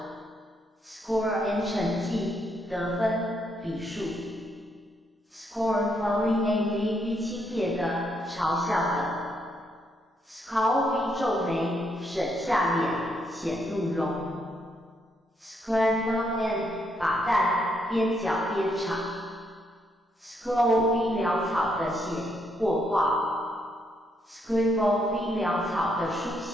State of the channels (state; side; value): normal; both; correlation 0.75